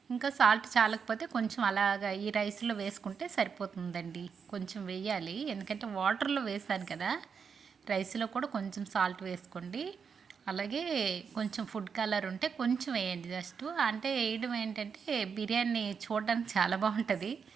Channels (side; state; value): left; quieter; 6.2 dB